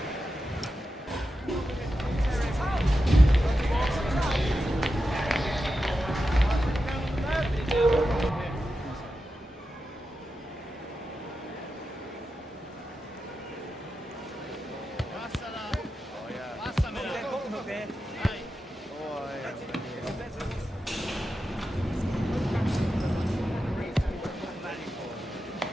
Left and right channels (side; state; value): both; normal; correlation 0.90